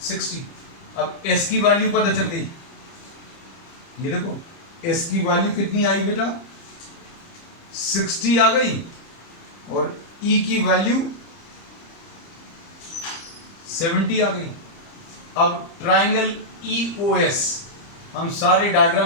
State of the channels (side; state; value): right; late; 30 ms